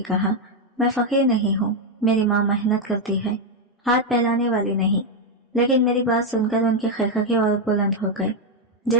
कहा, मैं फकीर नहीं हूँ, मेरी माँ मेहनत करती है, हाथ फैलाने वाली नहीं। लेकिन मेरी बात सुनकर उनके खैखके और बुलंद हो गए,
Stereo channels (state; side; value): normal; both; correlation 0.03